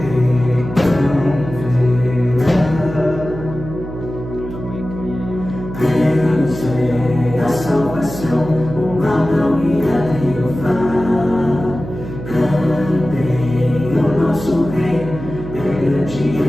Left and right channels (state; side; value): noise; right; hum, 10 dB below the sound